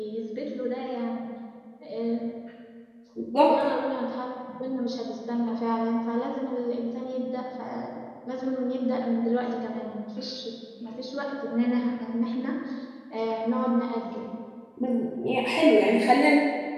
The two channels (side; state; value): both; identical; correlation 1.00